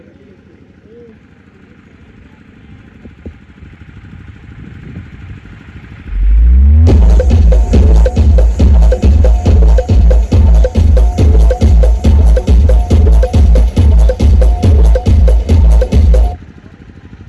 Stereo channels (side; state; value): both; identical; correlation 1.00